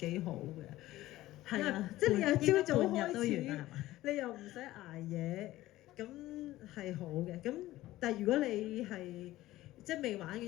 好嘅，係啊，即係你又朝早開始，你又唔使捱夜，咁係好嘅。咁但係如果你係即係未玩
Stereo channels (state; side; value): quieter; right; 16.2 dB